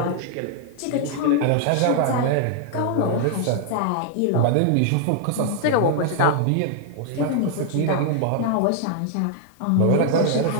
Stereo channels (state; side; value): different; both; correlation 0.00